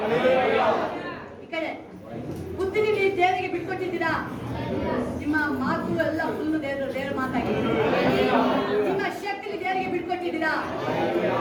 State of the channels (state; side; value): identical; both; correlation 1.00